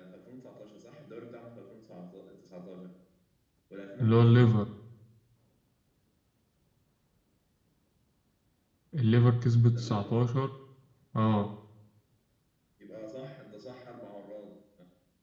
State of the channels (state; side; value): identical; both; correlation 1.00